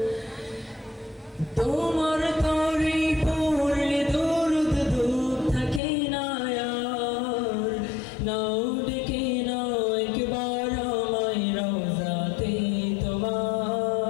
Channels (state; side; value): drops out; right; at 5.8 s